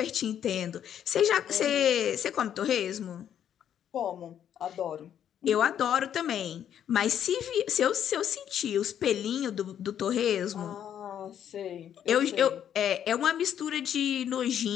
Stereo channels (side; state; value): right; quieter; 9.6 dB